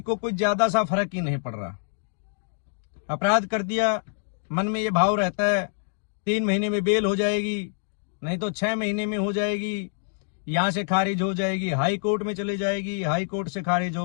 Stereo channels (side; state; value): right; silent; digital silence